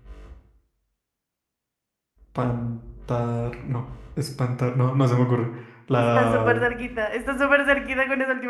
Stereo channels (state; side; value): identical; both; correlation 1.00